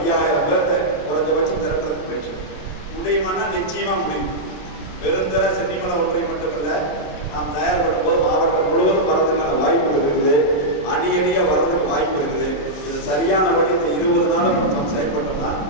பேர்த்த குறைஞ்சபட்சம் திரட்டுறதுக்கு முயற்சி முடியுமானா நிச்சயமாக முடியும். பெருந்தர சென்னிமலை ஒன்றை மட்டுமில்லை, நாம் தயார்படும் போது மாவட்டம் முழுவதும் வரதுக்கான வாய்ப்புகள் இருக்குது, அணியாக வர்றதுக்கு வாய்ப்பு இருக்குது. இது சரியான வழி இந்த 20 நாளும் நம்ம செயல்பட்டோம்னா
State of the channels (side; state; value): right; late; 27 ms